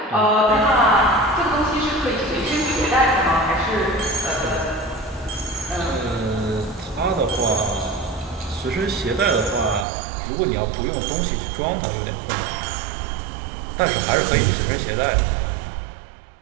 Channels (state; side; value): drops out; left; at 9.9 s